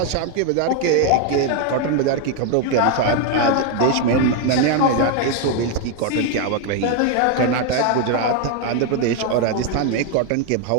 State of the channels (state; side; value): different; both; correlation 0.01